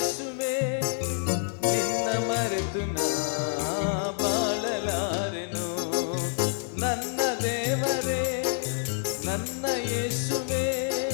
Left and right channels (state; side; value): silent; right; digital silence